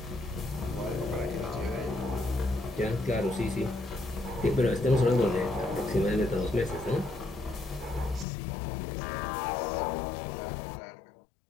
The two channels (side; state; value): right; drops out; at 8.2 s